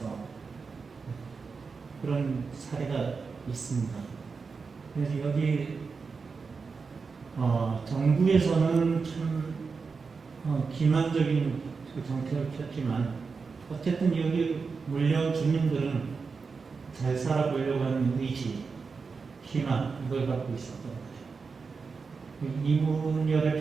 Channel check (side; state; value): left; quieter; 4.9 dB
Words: 그런 사례가 있습니다. 그래서 여기 정부에서는 참 기만적인 그 정책을 폈지만 어쨌든 여기 물려온 주민들은 잘 살아보려고 하는 의지, 희망 이걸 갖고 있었던 거예요.